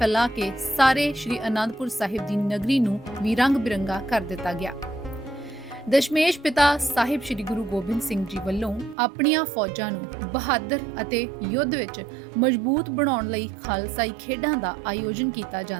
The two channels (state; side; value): drops out; left; at 9.0 s